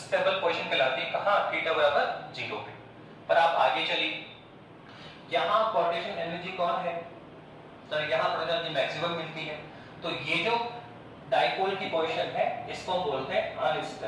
पोजीशन कहलाती है कहां थीटा बराबर 0 पे। पर आप आगे चलिए, यहां पार्टीशन एनर्जी कौन है सर, यहां पार्टीशन एनर्जी मैक्सिमम मिलती है, तो ये जो डायपोल की पोजीशन है इसको हम बोलते हैं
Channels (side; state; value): both; identical; correlation 1.00